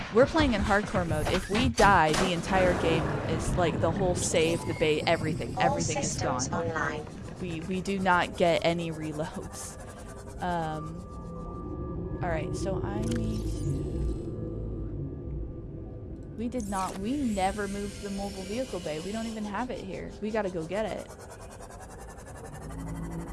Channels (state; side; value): identical; both; correlation 1.00